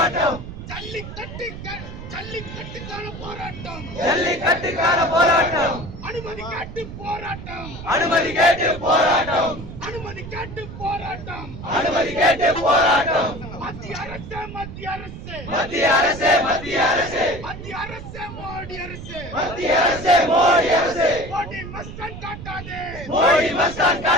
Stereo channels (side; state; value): right; noise; rumble, 11 dB below the sound